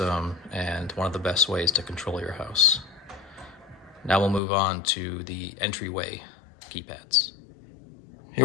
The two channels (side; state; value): right; drops out; at 4.4 s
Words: and one of the best ways to control your house. Now we'll move on to the entryway keypads.